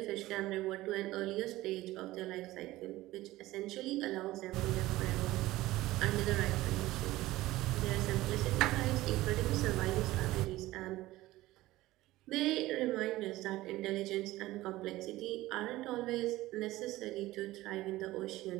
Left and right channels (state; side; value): quieter; left; 17.3 dB